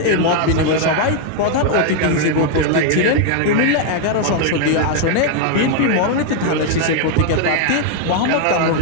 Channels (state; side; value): different; both; correlation 0.00